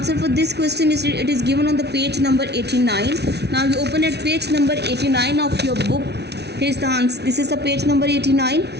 for this question is it is given on the page number 89. Now you open at page number 89 of your book. Here is the answer. This is the page number 89.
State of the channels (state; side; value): late; left; 0.49 ms